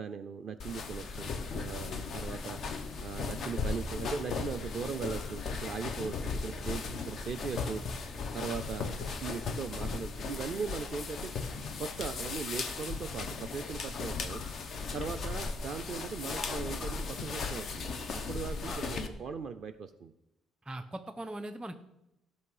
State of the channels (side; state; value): both; normal; correlation 0.68